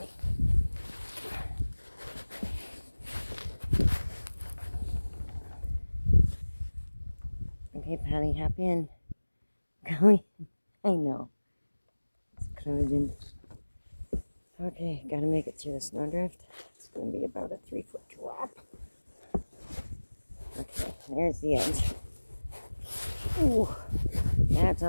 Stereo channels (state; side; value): inverted; both; correlation -1.00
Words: Okay, Patty, hop in. Going. I know. It's closing. Okay, gotta make it through the snowdrift. It's gonna be about a 3-foot drop. Okay, there's the edge. Ooh, that's